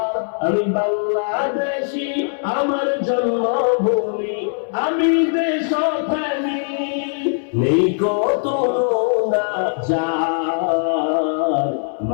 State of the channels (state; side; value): silent; right; 66 dB below the other